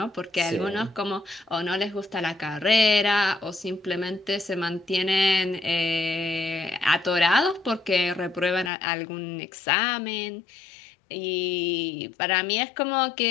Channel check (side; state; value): right; drops out; at 8.7 s